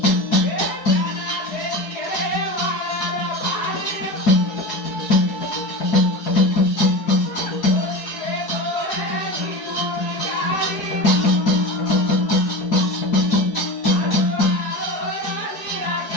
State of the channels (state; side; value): late; right; 4.7 ms